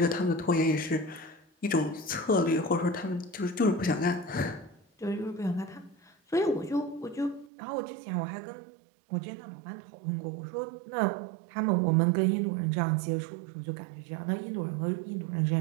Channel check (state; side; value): drops out; left; at 7.5 s